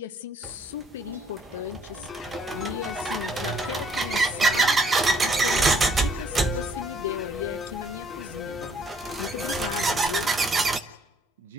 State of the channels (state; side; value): normal; both; correlation 0.65